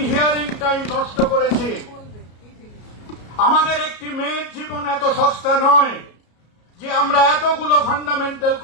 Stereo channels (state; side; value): late; right; 33 ms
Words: hearing time নষ্ট করেছি। আমাদের একটি মেয়ের জীবন এত সস্তা নয় যে আমরা এতগুলো ফান্ডামেন্টাল